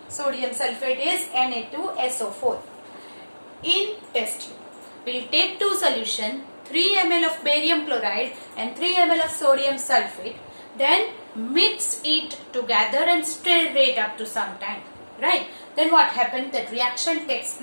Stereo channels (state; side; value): inverted; both; correlation -1.00